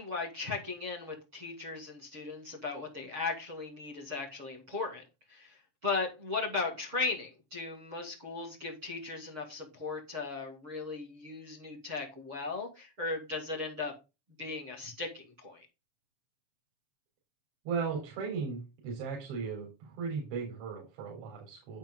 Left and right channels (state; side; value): late; left; 7.2 ms